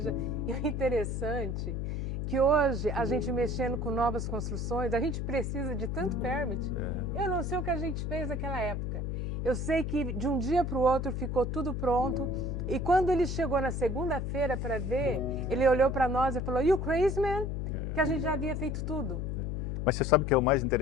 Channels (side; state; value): left; noise; hum, 2 dB below the sound